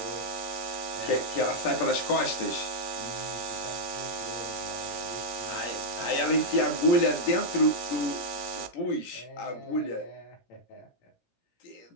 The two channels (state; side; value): late; right; 17 ms